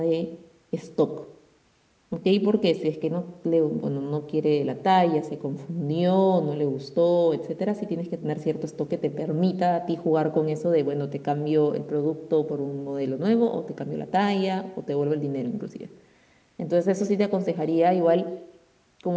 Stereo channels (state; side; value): identical; both; correlation 1.00